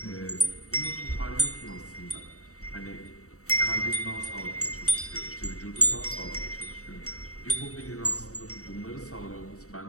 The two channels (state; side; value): late; right; 0.65 ms